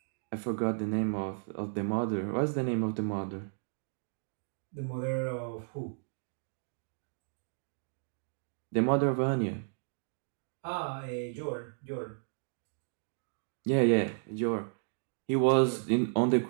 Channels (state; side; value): silent; left; digital silence